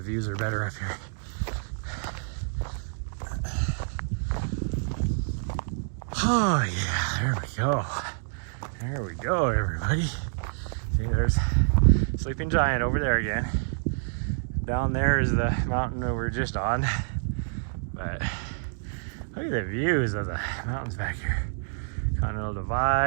views are better up here. Oh yeah, there we go. There we go, everybody. See, there's Sleeping Giant over there again. Down there is the mountain that we're just on. But look at the views of the mountains back here. Continental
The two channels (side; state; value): left; silent; digital silence